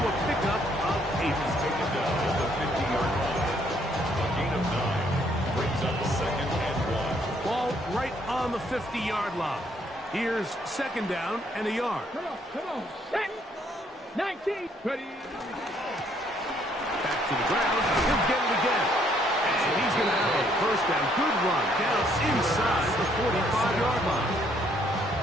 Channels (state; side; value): normal; both; correlation 0.68